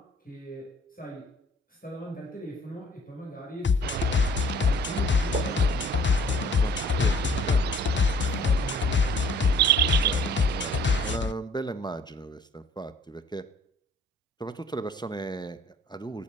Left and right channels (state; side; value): normal; both; correlation 0.55